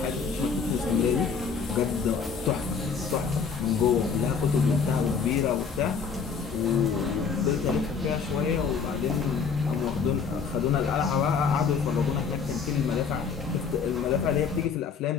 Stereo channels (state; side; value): quieter; right; 5.8 dB